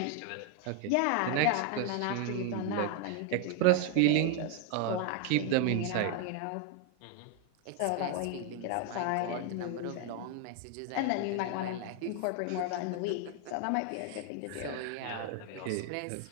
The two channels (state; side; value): different; both; correlation 0.01